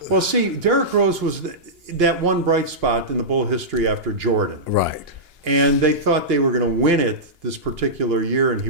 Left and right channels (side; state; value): left; late; 2.8 ms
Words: Well, see, Derek Rose was that one bright spot in the Bull history after Jordan. Right. And they thought they were going to win it this particular year, and he